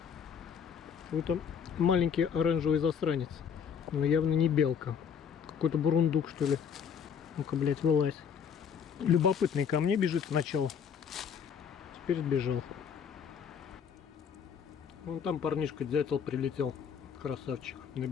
Вот там маленький оранжевый засранец. Но явно не белка. Какой-то бурундук, что ли. Ну-ка, блядь, вылазь. Любопытный ко мне бежит сначала. Теперь сбежал. Вон там парнишка дятел прилетел. Красавчик. На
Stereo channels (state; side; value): quieter; right; 7.2 dB